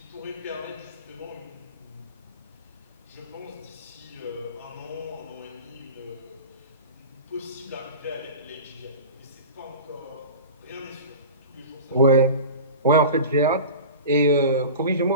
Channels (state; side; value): inverted; both; correlation -0.34